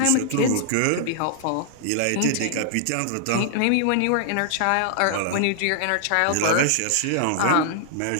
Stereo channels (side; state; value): both; different; correlation -0.01